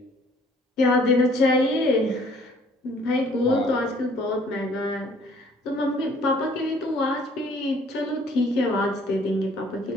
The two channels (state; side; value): normal; both; correlation 0.58